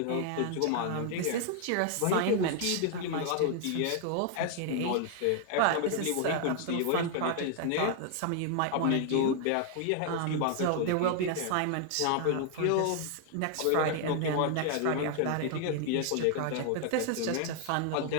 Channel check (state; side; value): different; both; correlation 0.00